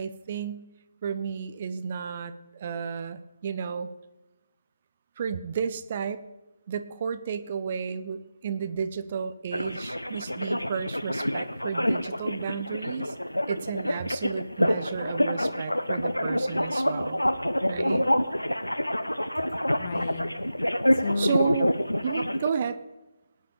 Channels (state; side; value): inverted; both; correlation -0.90